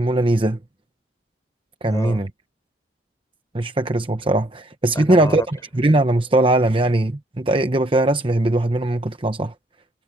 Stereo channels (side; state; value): both; normal; correlation 0.68